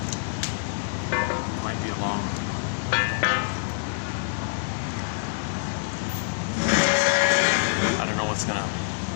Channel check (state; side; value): silent; right; 59 dB below the other